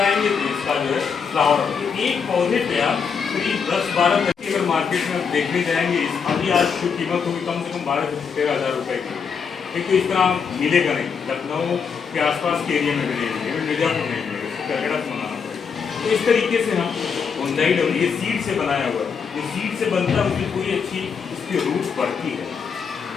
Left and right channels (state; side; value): quieter; right; 6.2 dB